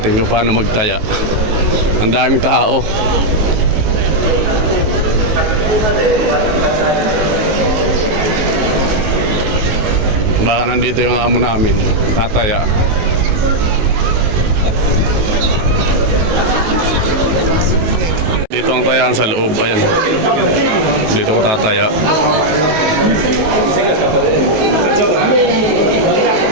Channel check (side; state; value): left; late; 19 ms